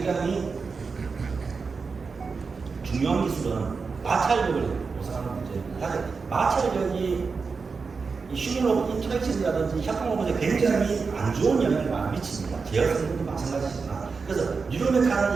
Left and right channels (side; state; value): left; quieter; 4.9 dB